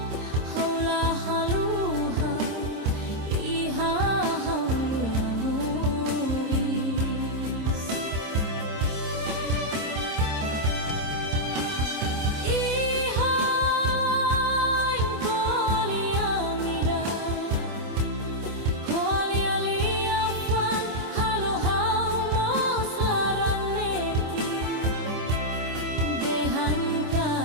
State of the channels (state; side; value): late; left; 26 ms